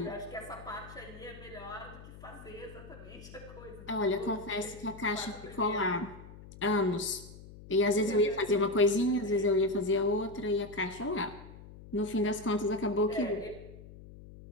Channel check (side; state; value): left; noise; hum, 17 dB below the sound